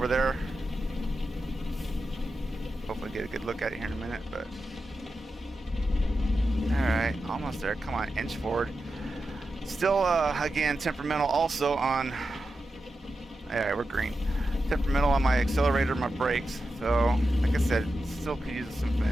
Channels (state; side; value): normal; both; correlation 0.90